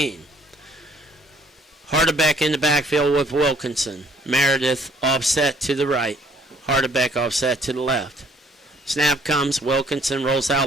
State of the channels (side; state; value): both; normal; correlation 0.61